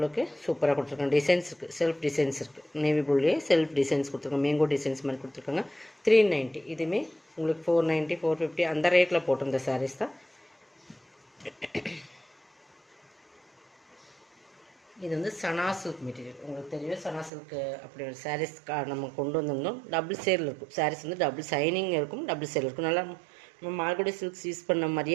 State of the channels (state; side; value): drops out; left; at 17.3 s